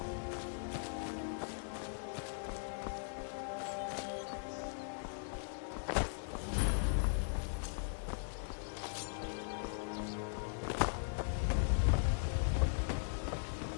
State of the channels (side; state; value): right; silent; digital silence